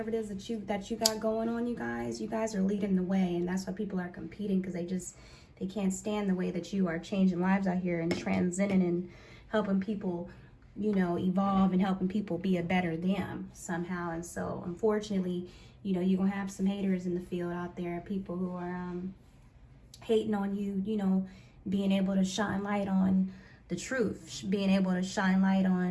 it is that you got going on, you guys are leading the way, and that's why people are competing, because they can't stand the way that you are changing lives out here and transcending and helping people, you know, evolve and helping people be a better them somehow. And so unfortunately, you know, you're gonna have some haters in the field out there, people who are hating on you, you know, being able to shine light on the truth, being able to shine light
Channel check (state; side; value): identical; both; correlation 1.00